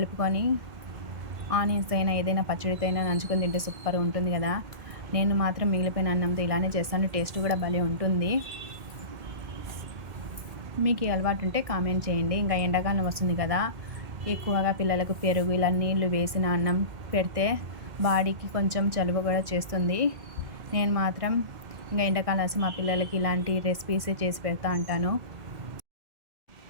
ఆనియన్స్ అయినా ఏదైనా పచ్చడితో అయినా నంచుకొని తింటే సూపర్ ఉంటుంది కదా. నేను మాత్రం మిగిలిపోయిన అన్నంతో ఇలానే చేస్తాను, టేస్ట్ కూడా భలే ఉంటుంది. మీకు ఈ అలవాటు ఉంటే కామెంట్ చేయండి. ఇంకా ఎండాకాలం వస్తుంది కదా, ఎక్కువగా పిల్లలకు పెరుగు ఇలా నీళ్లు వేసిన అన్నం పెడితే బాడీకి కొంచెం చలువ కూడా చేస్తుంది. నేను మాత్రం ఇంకా ఎండాకాలం వస్తే మా పిల్లలకి ఇలాంటి రెసిపీస్ చేసి పెడతా ఉంటాను.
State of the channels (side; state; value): left; late; 1.6 ms